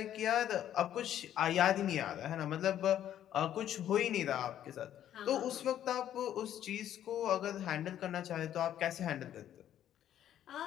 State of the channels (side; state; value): right; quieter; 11.1 dB